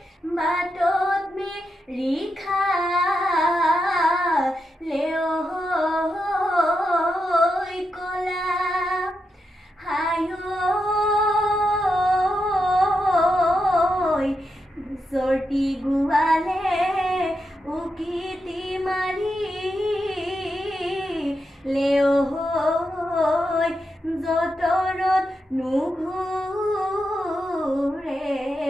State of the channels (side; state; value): both; normal; correlation 0.86